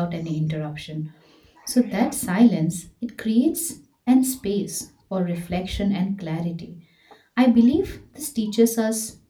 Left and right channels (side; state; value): both; identical; correlation 1.00